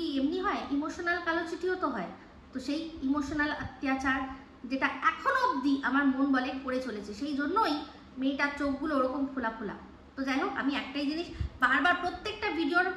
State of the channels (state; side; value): identical; both; correlation 1.00